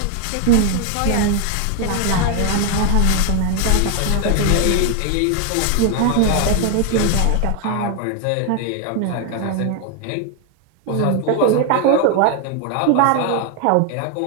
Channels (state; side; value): different; both; correlation 0.00